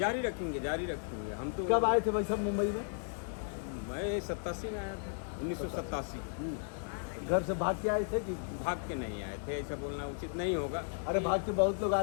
रखेंगे हम तो। कब आए थे भाई साहब मुंबई में? मैं 87 में आया था, 1987। घर से भाग के आए थे कि? भाग के नहीं आए थे, ऐसा बोलना उचित नहीं होगा। अरे भाग के बहुत लोग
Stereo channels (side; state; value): right; silent; 54 dB below the other